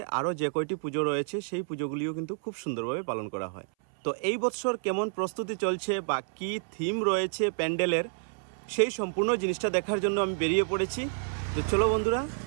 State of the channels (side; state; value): left; silent; 58 dB below the other